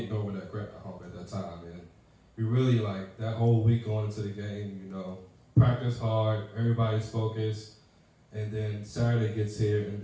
over that Gretna hump at that time. And we really like that whole week going into the game, practice hard, everybody's focused. And then Saturday gets here and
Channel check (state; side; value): identical; both; correlation 1.00